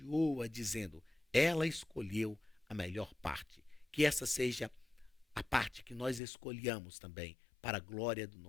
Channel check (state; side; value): drops out; right; at 6.2 s